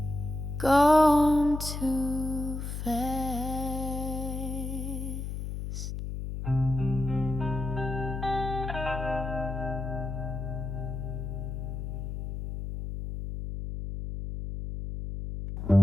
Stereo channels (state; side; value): noise; left; hum, 5 dB below the sound